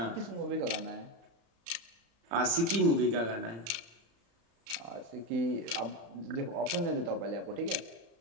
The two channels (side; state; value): left; late; 34 ms